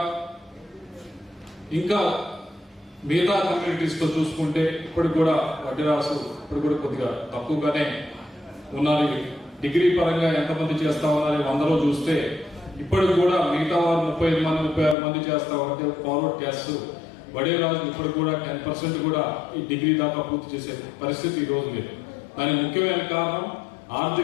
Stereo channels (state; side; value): drops out; right; at 15.0 s